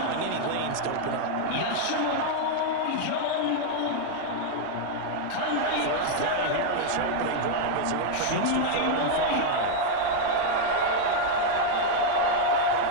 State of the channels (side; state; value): both; different; correlation 0.00